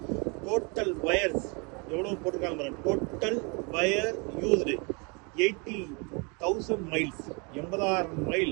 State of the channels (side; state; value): left; quieter; 31.8 dB